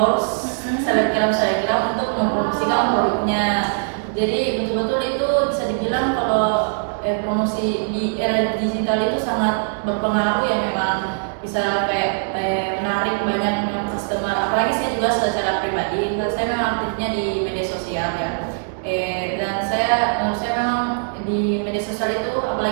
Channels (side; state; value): left; silent; digital silence